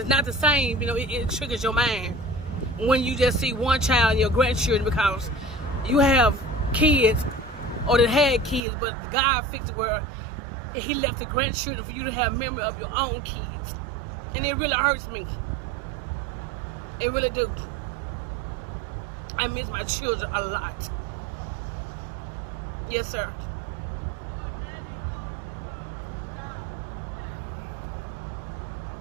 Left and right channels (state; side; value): drops out; left; at 8.6 s